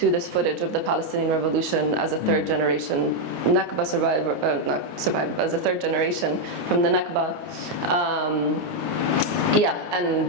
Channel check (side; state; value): left; late; 29 ms